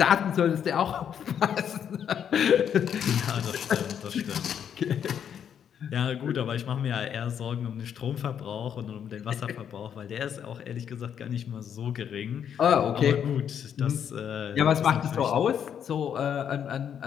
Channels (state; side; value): quieter; right; 8.6 dB